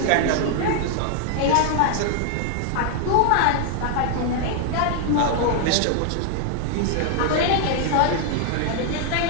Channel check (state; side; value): different; both; correlation 0.00